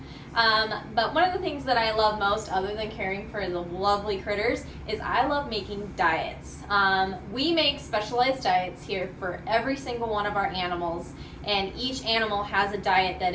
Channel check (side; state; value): both; identical; correlation 1.00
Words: But one of the things that I love most, other than caring for the lovely critters, is I love making diets. We make specialized diets here for every single one of our animals, and each animal has a diet that